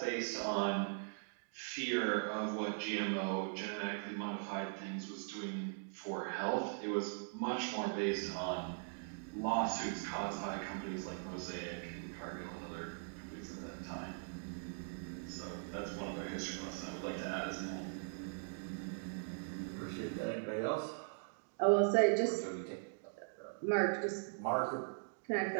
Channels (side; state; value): left; silent; digital silence